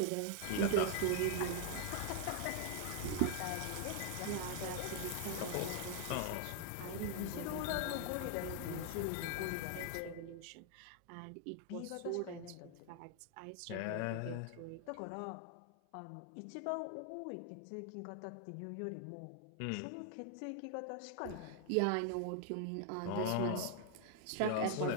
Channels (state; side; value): different; both; correlation 0.00